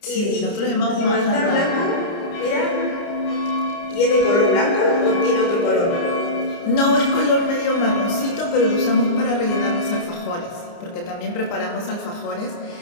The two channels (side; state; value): right; late; 29 ms